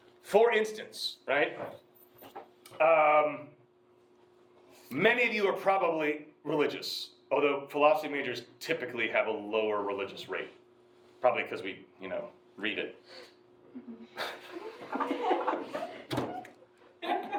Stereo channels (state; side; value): identical; both; correlation 1.00